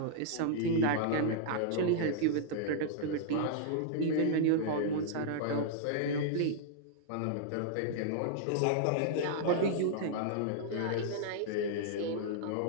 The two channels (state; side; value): different; both; correlation -0.01